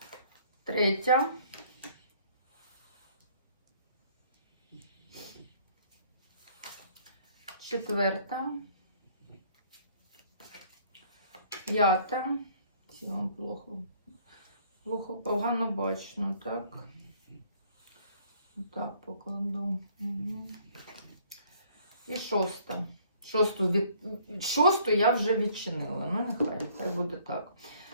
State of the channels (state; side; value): inverted; both; correlation -0.60